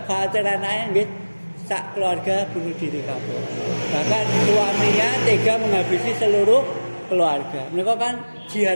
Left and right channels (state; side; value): inverted; both; correlation -1.00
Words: khawatir anake nggih sak keluarga bunuh diri kabeh. Bahkan suaminya tega menghabisi seluruh keluarga. Mereka kan